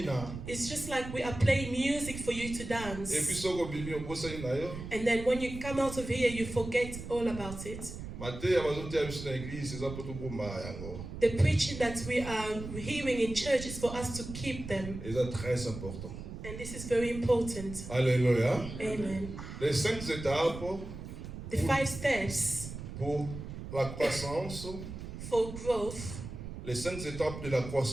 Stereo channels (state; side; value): noise; right; rumble, 9 dB below the sound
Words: It's just like we are playing music for you to dance. And then when you come out of here, you forget all about it. The preaching that we are hearing in church is for us to keep them. And this is very important. Alléluia. Amen. Les 5 étapes. The 5 steps. Pour la croissance. For growth. Les 5 étapes de la